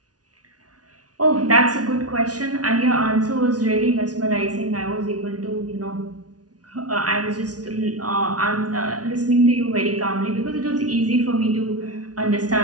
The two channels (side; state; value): left; late; 0.68 ms